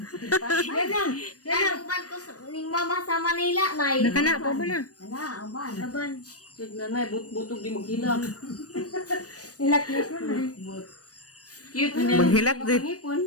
Yan ang ko ni Mama sa Manila, Nay. Nakana pa ba na? Laban. Sige na, butog di maghilak. Hilak-hilak na. Cute na Maghilak din.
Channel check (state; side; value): late; right; 0.67 ms